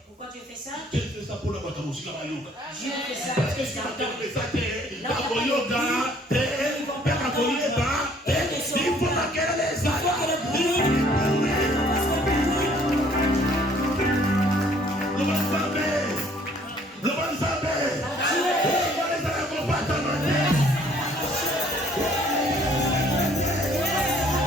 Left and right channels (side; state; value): both; normal; correlation 0.59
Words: Pourquoi tu fais ça? Tu fais ça pour la musique à yoga. Dieu fait ça. Parce que si tu fais ça, tu es yoga, il faut laquelle les Amen.